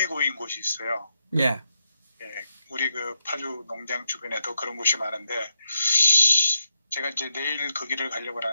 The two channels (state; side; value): inverted; both; correlation -0.82